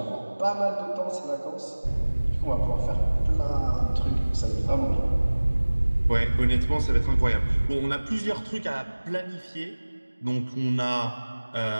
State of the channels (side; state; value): both; inverted; correlation -1.00